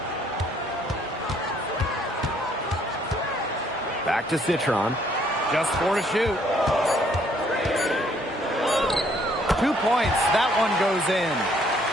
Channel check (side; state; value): both; normal; correlation 0.65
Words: Back to Citron. Just 4 to shoot. 2 points. That one goes